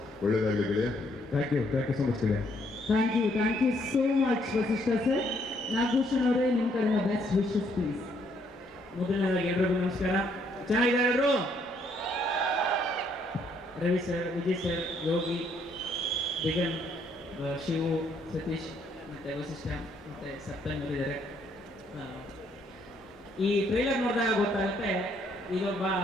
ಒಳ್ಳೆಯದಾಗಲಿ ಗೆಳೆಯ. ಥ್ಯಾಂಕ್ ಯು ಸೊ ಮಚ್ ಗೆಳೆಯ. Thank you so much Vasishta sir. Nagabhushan ಅವರೇ, ನಿಮ್ಮ ಕಡೆಯಿಂದ ಬೆಸ್ಟ್ ವಿಶಸ್ ಪ್ಲೀಸ್. ಮೊದಲನೇದಾಗಿ ಎಲ್ರಿಗೂ ನಮಸ್ಕಾರ. ಚೆನ್ನಾಗಿದ್ದಾರೆ ಎಲ್ಲರೂ? ರವಿ ಸರ್, ವಿಜಯ್ ಸರ್, ಯೋಗಿ, ಬಿಗನ್, ಶಿವು, ಸತೀಶ್ ಮತ್ತು ವಸಿಷ್ಠ ಮತ್ತು ಸಪ್ತಮಿ ಅವರಿದ್ದಾರೆ. ಈ ಟ್ರೈಲರ್ ನೋಡಿದಾಗ ಗೊತ್ತಾಗುತ್ತೆ ಇದೊಬ್ಬ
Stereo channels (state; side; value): normal; both; correlation 0.69